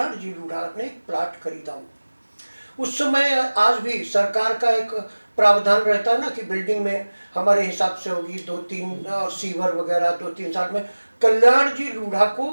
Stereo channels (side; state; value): both; inverted; correlation -1.00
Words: जी लूढ़ा ने एक प्लाट खरीदा। उस समय, आज भी सरकार का एक प्रावधान रहता है ना कि बिल्डिंग में हमारे हिसाब से होगी 2-3 और सीवर वगैरह 2-3 साल में। कल्याण जी लूढ़ा को